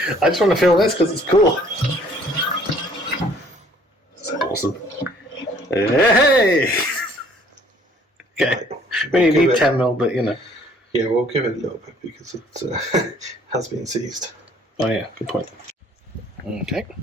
I just want to feel this because it's cool. That's awesome. Hey! Okay. We only need 10mm, but you know. Yeah, we'll give it a little bit because it has been seized. Oh yeah, good point. Okay.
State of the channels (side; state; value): both; normal; correlation 0.58